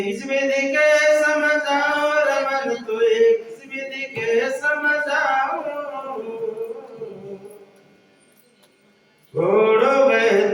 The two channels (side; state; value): both; identical; correlation 1.00